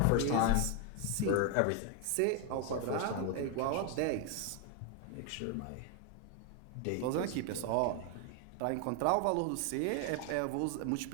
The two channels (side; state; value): both; different; correlation 0.01